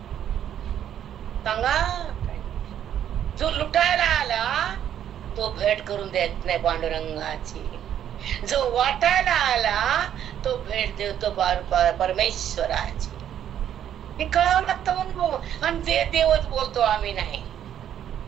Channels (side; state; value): left; quieter; 10.2 dB